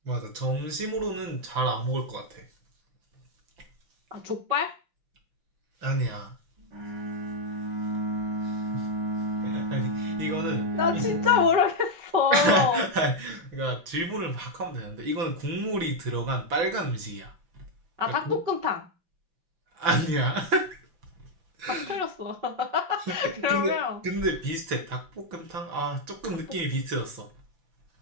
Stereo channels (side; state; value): left; late; 6.0 ms